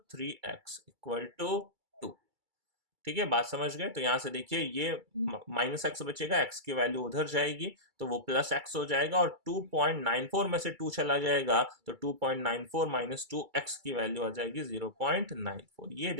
इक्वल टू 2, ठीक है। बात समझ गए। तो यहाँ से देखिए ये -x बचेगा, x की वैल्यू उधर जाएगी तो वो +x हो जाएगा और 2.94 में से 2 चला जाएगा तो 2.94 माइनस 2x की वैल्यू आ जाएगी 0.94। ये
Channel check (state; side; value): late; left; 2.3 ms